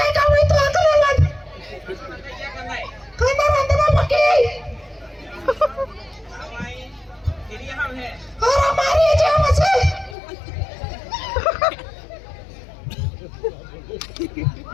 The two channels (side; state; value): right; drops out; at 10.2 s